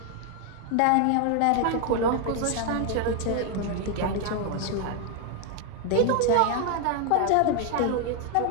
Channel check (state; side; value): different; both; correlation 0.01